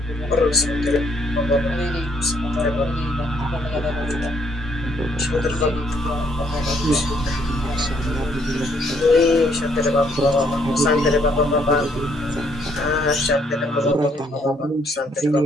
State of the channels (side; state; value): both; normal; correlation 0.69